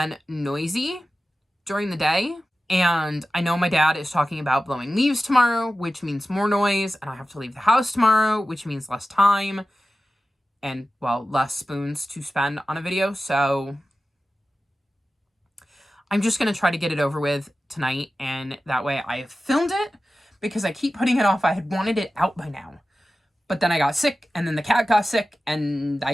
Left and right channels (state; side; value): normal; both; correlation 0.95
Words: noisy during the day. And I know my dad is talking about blowing leaves tomorrow, which means more noise, and I have to leave the house tomorrow, which means less time and, well, less spoons to spend on a video. So I'm just going to try to get it over with tonight, and that way I have filmed it, because I keep putting it off. I had wanted it out by now, but then I got sick, and then the cat got sick, and I